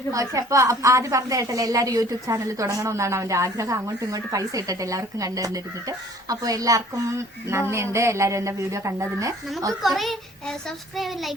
പക്ഷെ അപ്പൊ ആദ്യം പറഞ്ഞ കേട്ടല്ലേ എല്ലാവരും യൂട്യൂബ് ചാനൽ തുടങ്ങണമെന്നാണ് അവന്റെ ആഗ്രഹം. അങ്ങോട്ടും ഇങ്ങോട്ടും പൈസ ഇട്ടിട്ട് എല്ലാവർക്കും കണ്ടിരുന്നിട്ട്. അപ്പൊ എല്ലാവർക്കും നന്ദിയുണ്ട്, എല്ലാരും എന്റെ വീഡിയോ കണ്ടതിന്. നമുക്ക് കുറെ സബ്സ്ക്രൈബ്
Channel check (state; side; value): normal; both; correlation 0.54